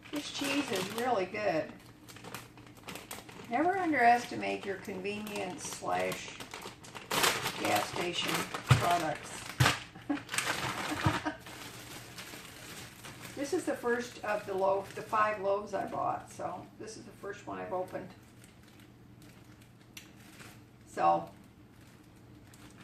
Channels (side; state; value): both; identical; correlation 1.00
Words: This cheese is really good. Never underestimate your convenience slash gas station products. This is the first of the 5 loaves I bought, so this is the first one I've opened. So,